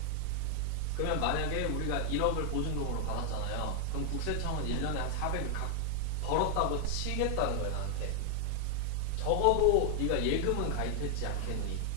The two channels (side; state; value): both; different; correlation 0.00